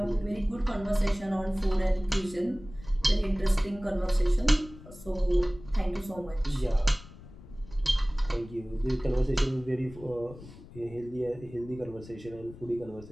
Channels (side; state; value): left; noise; rumble, 18 dB below the sound